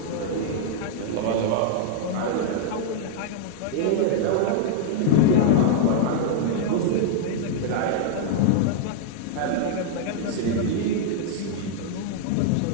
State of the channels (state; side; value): different; both; correlation -0.01